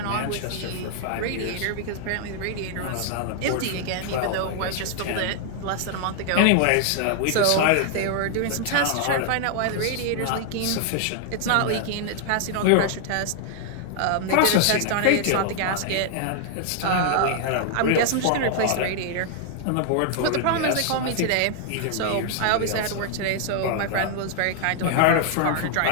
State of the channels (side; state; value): both; different; correlation 0.00